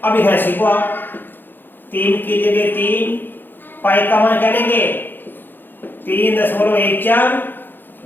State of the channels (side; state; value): right; late; 0.094 ms